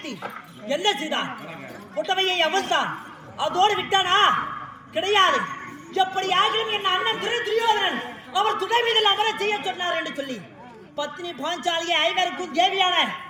என்ன செய்தான்? புட்டவையை அவிழ்த்தான். அதோடு விட்டானா? கிடையாது. எப்படி ஆகிலும் என் அண்ணன் துரியோதனன் அவர் துணை மீதில் அமர செய்ய சொன்னார் என்று சொல்லி பத்னி பாஞ்சாலியை ஐவருக்கும் தேவியான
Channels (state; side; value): identical; both; correlation 1.00